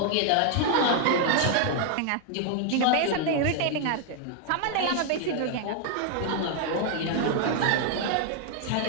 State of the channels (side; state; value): both; different; correlation 0.00